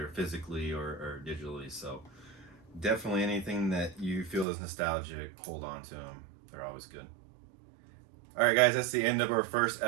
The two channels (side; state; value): left; drops out; at 4.5 s